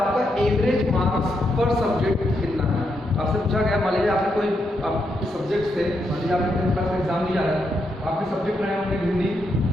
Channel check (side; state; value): both; normal; correlation 0.81